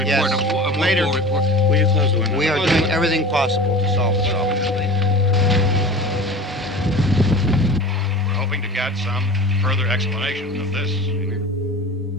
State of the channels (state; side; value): normal; both; correlation 0.37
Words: Yes. A Later. report. Will you close the window? We are doing everything possible to solve the problem. We're hoping to get some further explanation of this